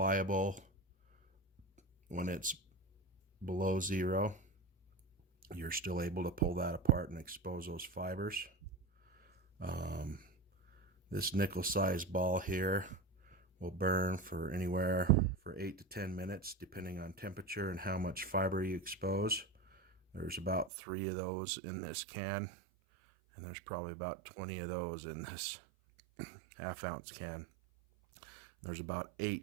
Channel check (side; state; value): left; drops out; at 20.7 s